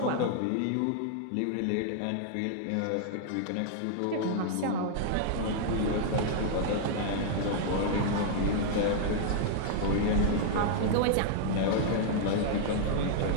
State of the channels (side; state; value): both; different; correlation -0.01